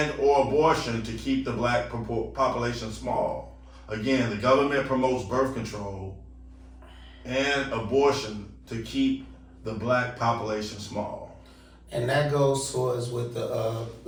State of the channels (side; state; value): both; identical; correlation 1.00